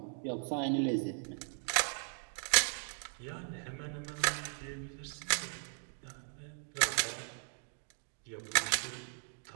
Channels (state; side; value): silent; left; 53 dB below the other